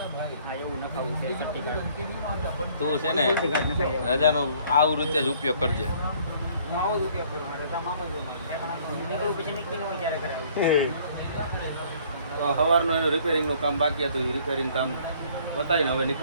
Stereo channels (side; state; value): both; inverted; correlation -0.59